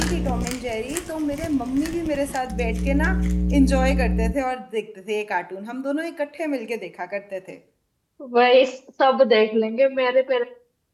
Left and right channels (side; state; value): both; identical; correlation 1.00